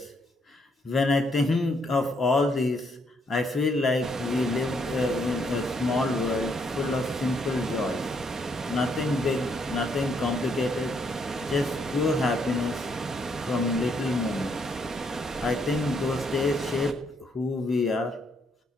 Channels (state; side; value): normal; both; correlation 0.72